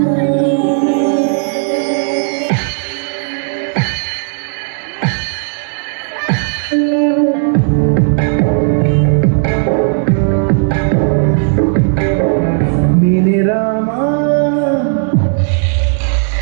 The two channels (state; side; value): silent; left; digital silence